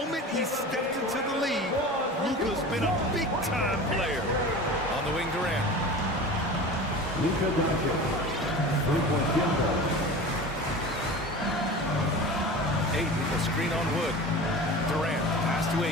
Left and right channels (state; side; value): normal; both; correlation 0.34